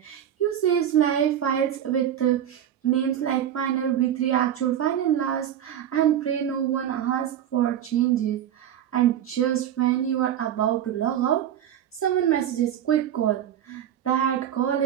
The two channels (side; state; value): left; quieter; 10.3 dB